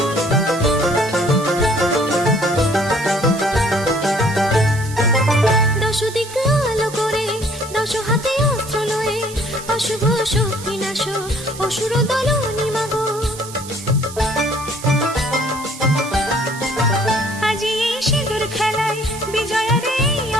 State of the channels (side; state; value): right; noise; hiss, 14 dB below the sound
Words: অশুভ শক্তি নাশ অসুর দলনি মাগো। আজি এই সিঁদুর খেলায় বিজয়ার এই